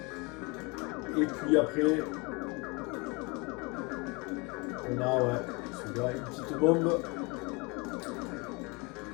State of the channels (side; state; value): right; quieter; 28.5 dB